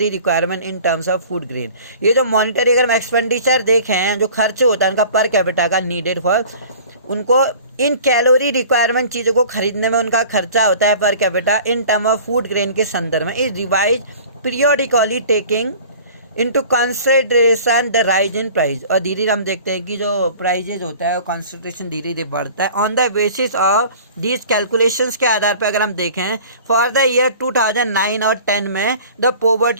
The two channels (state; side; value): inverted; both; correlation -0.45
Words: requirement in terms of food grain, ये जो मॉनिटरी अगर हम एक्सपेंडिचर देखें, जो खर्च होता है उनका पर कैपिटा का नीडेड फॉर, उनको इन कैलोरी रिक्वायरमेंट चीज़ों को खरीदने में उनका खर्चा होता है per capita in term of food grain के संदर्भ में, is revise periodically taking into consideration the rise in price. और धीरे धीरे हम देखते हैं कि जो प्राइजेज होता है वो कंसिडरेशन धीरे धीरे बढ़ता है। On the basis of these calculations के आधार पर अगर हम देखें फॉर द ईयर 2009 और 10 में the